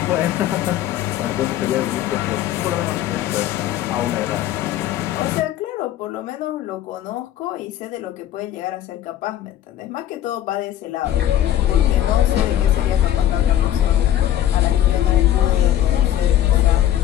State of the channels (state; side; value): quieter; right; 12.1 dB